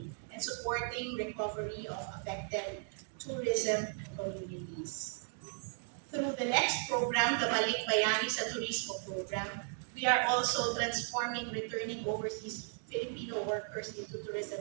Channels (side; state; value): left; silent; 54 dB below the other